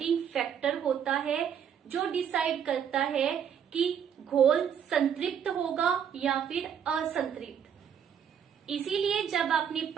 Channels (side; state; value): left; quieter; 8.2 dB